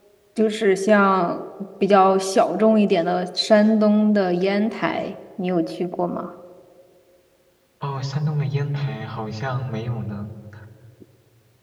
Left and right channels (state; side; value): identical; both; correlation 1.00